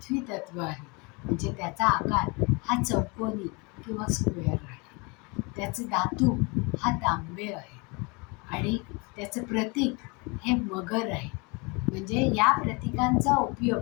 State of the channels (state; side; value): quieter; right; 29.3 dB